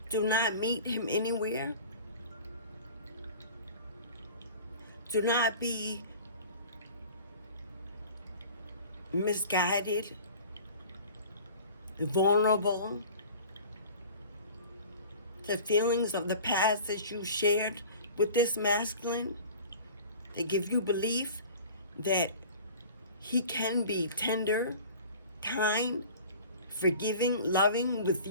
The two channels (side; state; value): both; inverted; correlation -0.42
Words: Do not meet him anywhere. Do not be misguided, vulnerable to feelings of the past that you shared with this masculine. They give you belief that he can be tender, kind, forgiving, loving with